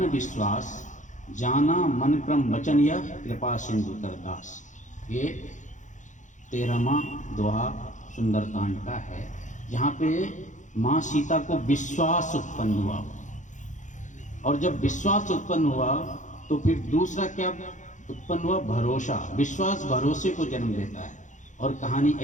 विश्वास, जाना मन क्रम वचन यह कृपा सिंधु करदास। ये 13वां दोहा सुंदरकांड का है, जहाँ पे माँ सीता को विश्वास उत्पन्न हुआ। और जब विश्वास उत्पन्न हुआ तो फिर दूसरा क्या उत्पन्न हुआ? भरोसा। विश्वास भरोसे को जन्म देता है। और कहानी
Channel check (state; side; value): late; right; 0.36 ms